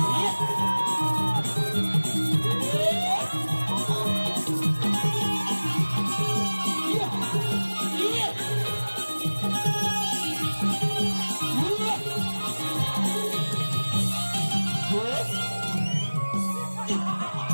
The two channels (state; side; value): inverted; both; correlation -1.00